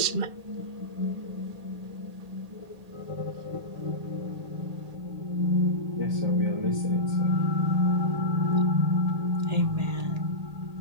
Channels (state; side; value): late; left; 1.8 ms